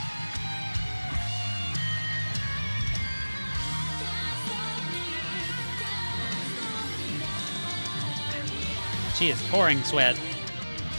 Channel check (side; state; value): both; inverted; correlation -1.00